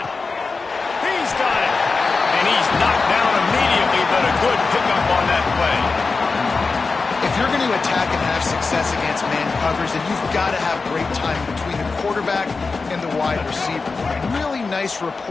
He's got it. And he's knocked down immediately, but a good pickup on that play. If you're going to attack and have success against man covers, then you've got to have great time between the quarterback and the wide receiver. Really nice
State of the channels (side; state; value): right; quieter; 4.2 dB